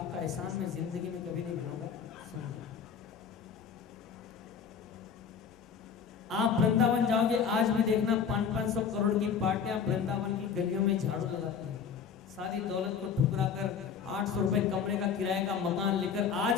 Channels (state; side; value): quieter; right; 6.9 dB